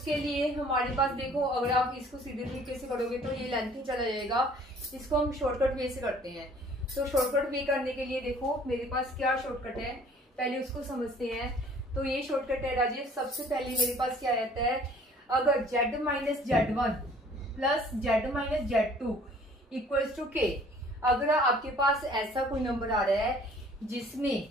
लिए हमारे पास देखो, अगर आप इसको सीधे तरीके से करोगे तो ये लेंथ ही चला जाएगा। इसको हम शॉर्टकट वे से करते हैं। तो शॉर्टकट वे करने के लिए देखो मेरे पास क्या शॉर्टकट है, पहले उसको समझते हैं। तो ये शॉर्टकट है राजेश, सबसे पहले मेरे पास क्या रहता है, अगर z minus Z1 plus Z minus Z2 equals to k, अगर आपके पास ऐसा कोई नंबर आ रहा है जिसमें,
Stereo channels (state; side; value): normal; both; correlation 0.54